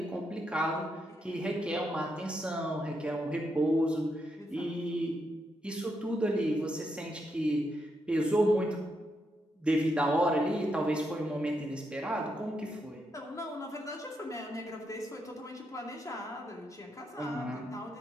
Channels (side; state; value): both; normal; correlation 0.81